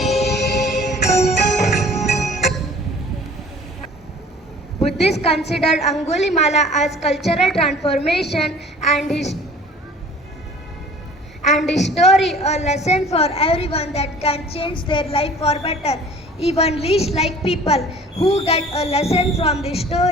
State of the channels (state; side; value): normal; both; correlation 0.48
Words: Buddhists consider Angulimala as cultural transformation and his story a lesson for everyone that can change their life for better. Even least like people who get a lesson from this